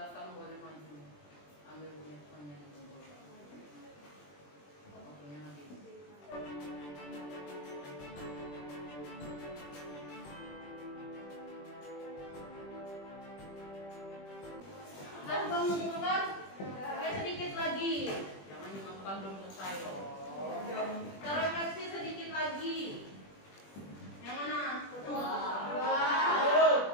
boleh maju, ambil handphone-nya di bawah. Waktunya habis. Sudah mengumpulkan? Oke, sedikit lagi. Jangan dimakan belum selesai. Terefleksi sedikit lagi. Yang mana? Dua.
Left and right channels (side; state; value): right; late; 20 ms